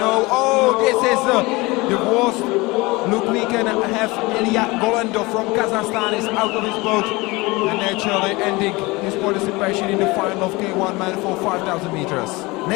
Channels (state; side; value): quieter; right; 23.2 dB